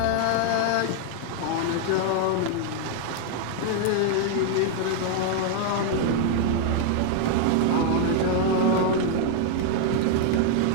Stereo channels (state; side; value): different; both; correlation 0.00